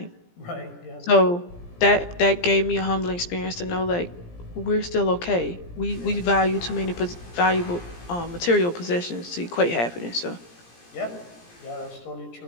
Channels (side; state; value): right; late; 17 ms